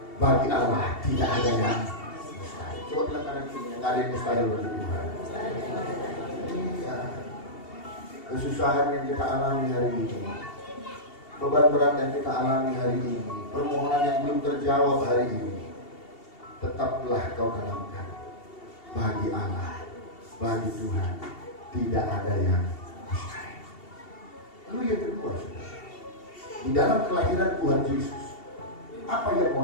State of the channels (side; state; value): right; late; 2.7 ms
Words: bagi Allah tidak ada yang mustahil. Coba bilang kanan kiri, yang ada yang mustahil bagi Tuhan. Iya. Kesusahan yang kita alami hari ini, beban berat yang kita alami hari ini, permohonan yang belum terjawab hari ini, tetaplah kau tanamkan. Bagi Allah, bagi Tuhan tidak ada yang mustahil. Lalu yang kedua, saudara, di dalam kelahiran Tuhan Yesus, apa yang